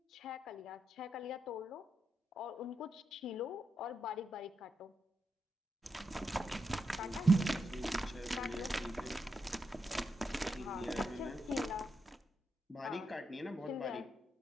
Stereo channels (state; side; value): normal; both; correlation 0.84